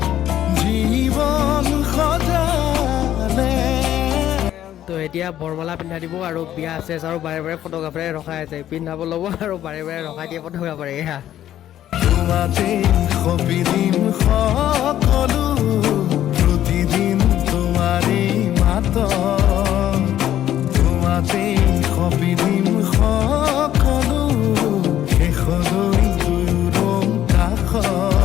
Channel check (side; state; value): right; quieter; 11.9 dB